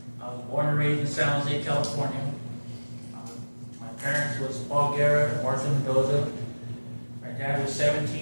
I was born and raised in San Jose, California. My parents was Paul Guerra and Martha Mendoza. My dad was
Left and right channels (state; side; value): inverted; both; correlation -1.00